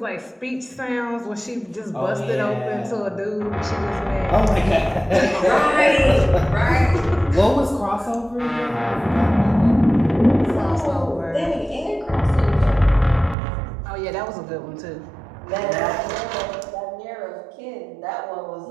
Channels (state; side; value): drops out; left; at 13.4 s